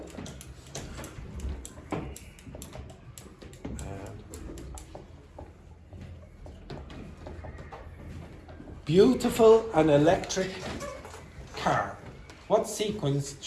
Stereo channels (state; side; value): identical; both; correlation 1.00